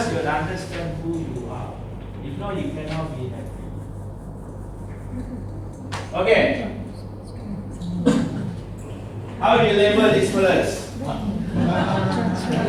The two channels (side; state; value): both; identical; correlation 1.00